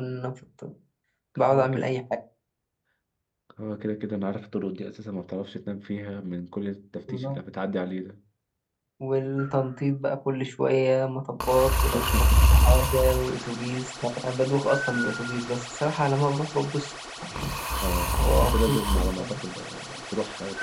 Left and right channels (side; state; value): both; identical; correlation 1.00